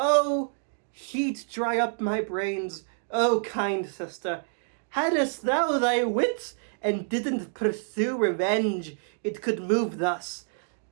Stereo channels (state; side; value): silent; left; digital silence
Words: heat dry up my brains, oh kind sister. Hadst thou thy wits, and didn't pursue revenge, it could move thus.